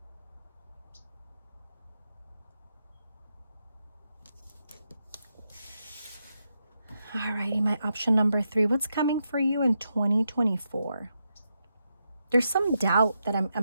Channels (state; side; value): inverted; both; correlation -0.84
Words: Alrighty, my option number 3. What's coming for you in 2024? There's some doubt that